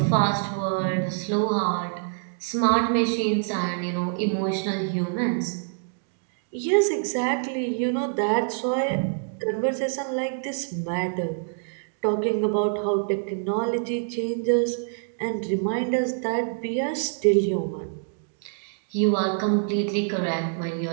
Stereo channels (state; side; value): silent; left; digital silence